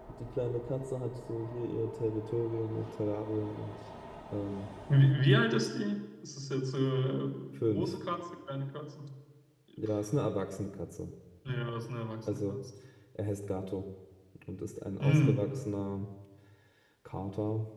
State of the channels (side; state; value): both; identical; correlation 1.00